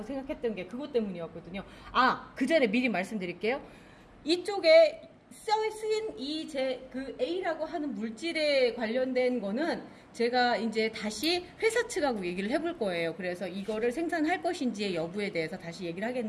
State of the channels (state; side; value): identical; both; correlation 1.00